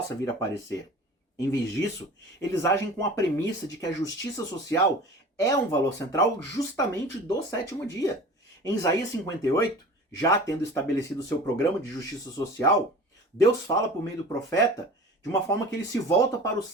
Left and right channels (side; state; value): both; normal; correlation 0.39